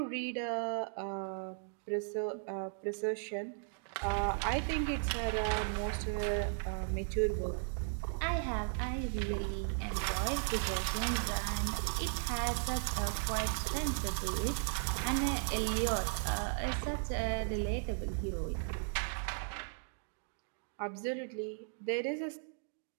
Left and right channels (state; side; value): silent; left; digital silence